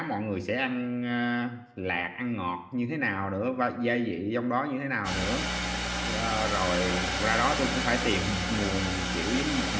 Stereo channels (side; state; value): both; identical; correlation 1.00